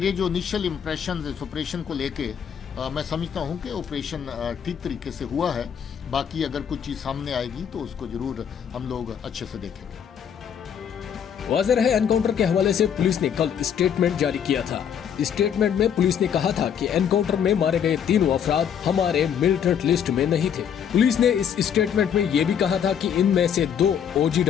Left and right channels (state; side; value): quieter; right; 8.3 dB